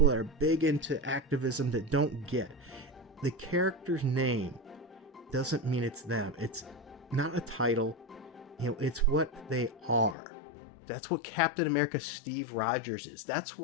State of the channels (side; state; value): right; drops out; at 10.2 s